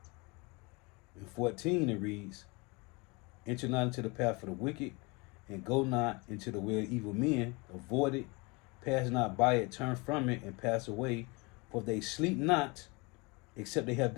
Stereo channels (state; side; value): quieter; right; 27.4 dB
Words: and 14, it reads, enter not into the path of the wicked, and go not into the way of evil men. Avoid it, pass not by it, turn from it, and pass away. For they sleep not, except they have